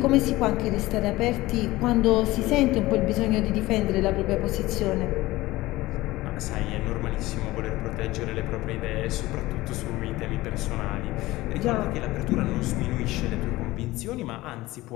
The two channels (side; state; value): right; quieter; 18.5 dB